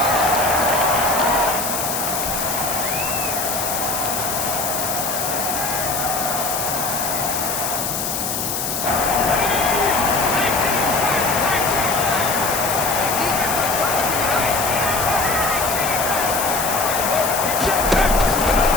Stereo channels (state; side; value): noise; left; hiss, 2 dB below the sound